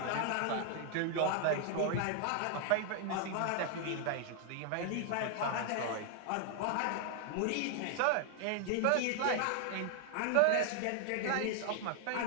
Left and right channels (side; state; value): both; different; correlation 0.00